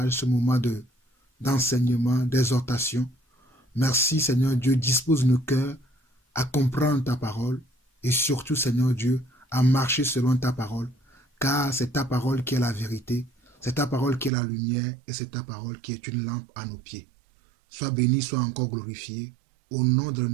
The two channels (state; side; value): drops out; left; at 14.3 s